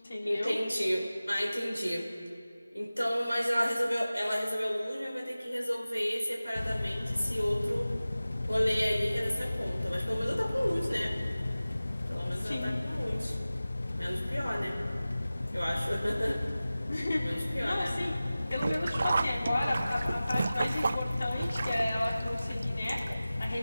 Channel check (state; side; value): inverted; both; correlation -0.97